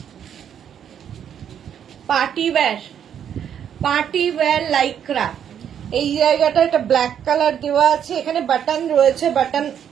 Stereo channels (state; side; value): quieter; left; 8.9 dB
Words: party wear Lycra. এই জায়গাটা এটা ব্ল্যাক কালার দেওয়া আছে, এখানে বাটন রয়েছে, বাটন